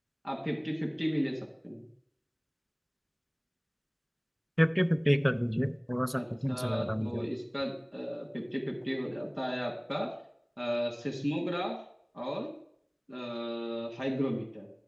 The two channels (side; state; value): both; identical; correlation 1.00